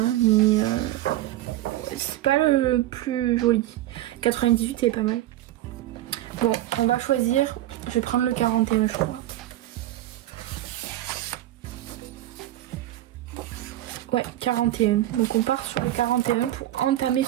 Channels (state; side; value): quieter; left; 14.3 dB